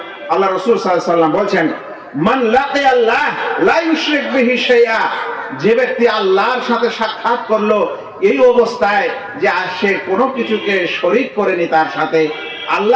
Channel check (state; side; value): identical; both; correlation 1.00